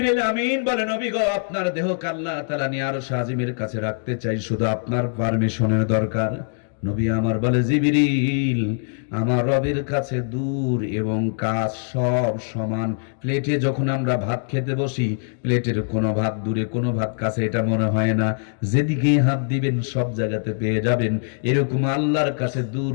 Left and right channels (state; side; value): silent; right; digital silence